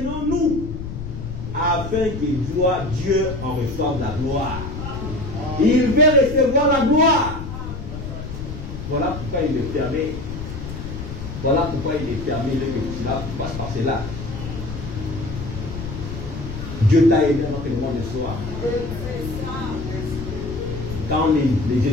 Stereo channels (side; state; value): left; noise; rumble, 8 dB below the sound